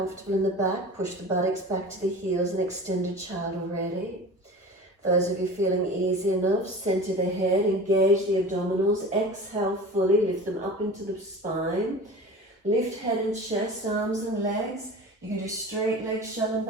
in the back, push the buttocks back to the heels and extended child already. Those of you feeling easy enough, center the head, engage the abdominals, exhale fully, lift them up into the spine. Lift head and chest, arms and legs. You can do straight leg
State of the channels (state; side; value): normal; both; correlation 0.36